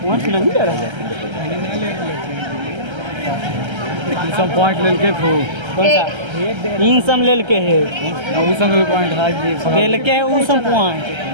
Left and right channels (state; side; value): late; left; 1.3 ms